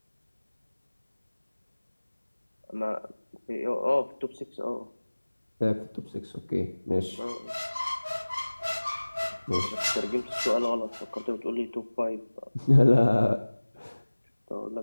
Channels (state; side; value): inverted; both; correlation -1.00